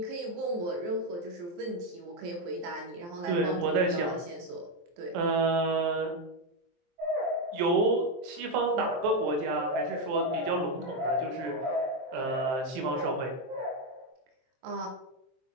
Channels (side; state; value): left; late; 23 ms